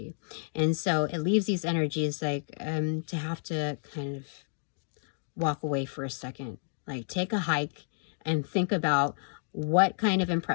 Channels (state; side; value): silent; right; digital silence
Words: And so it leaves these energies like to have to kind of walk away for a second, like take a hike and think about what kind of